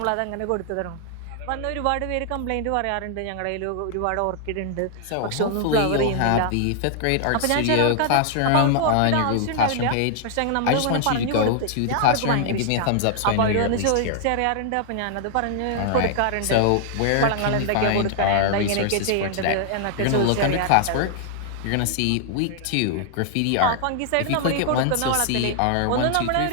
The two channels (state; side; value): different; both; correlation 0.00